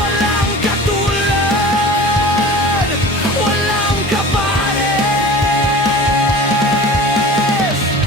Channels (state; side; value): normal; both; correlation 0.39